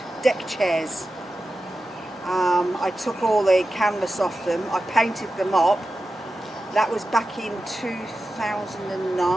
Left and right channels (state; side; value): normal; both; correlation 0.92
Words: deck chairs. I took all the canvas off them. I painted them up. That was back in